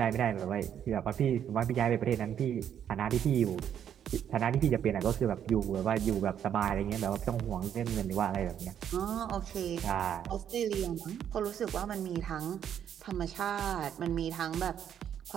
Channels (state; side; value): quieter; left; 9.3 dB